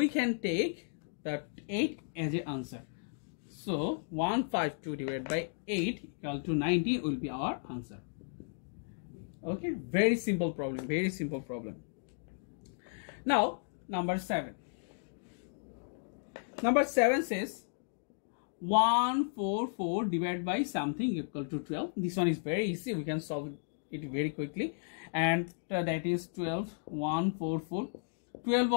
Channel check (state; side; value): silent; right; digital silence